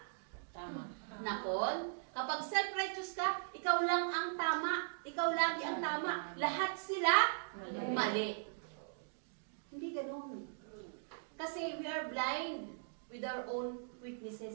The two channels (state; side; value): silent; left; digital silence